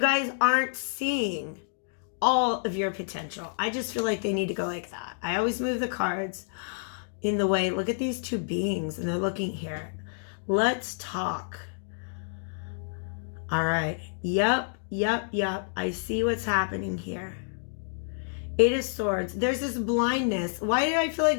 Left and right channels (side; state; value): right; silent; digital silence